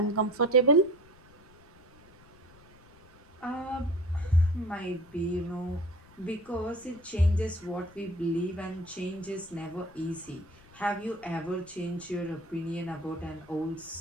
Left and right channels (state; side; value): noise; left; rumble, 26 dB below the sound